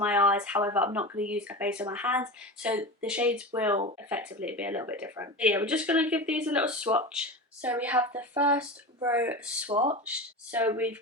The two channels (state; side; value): normal; both; correlation 0.27